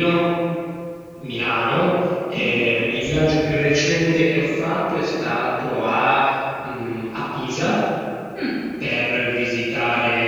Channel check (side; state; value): both; identical; correlation 1.00